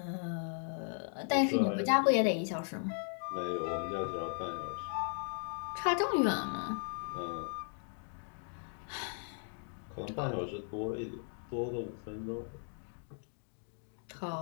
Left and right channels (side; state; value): right; silent; 53 dB below the other